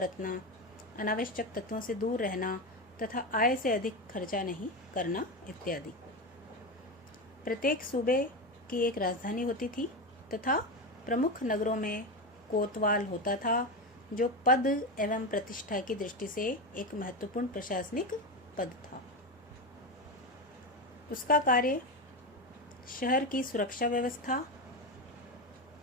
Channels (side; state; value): both; normal; correlation 0.17